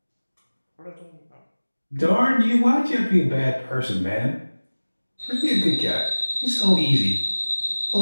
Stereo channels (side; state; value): both; inverted; correlation -1.00